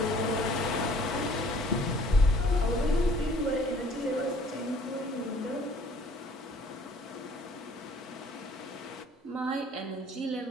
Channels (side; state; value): both; normal; correlation 0.56